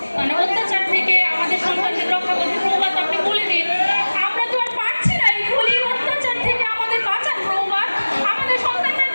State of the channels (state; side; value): inverted; both; correlation -1.00